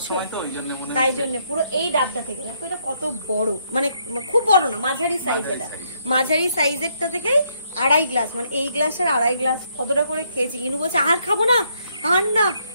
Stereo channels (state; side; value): inverted; both; correlation -0.72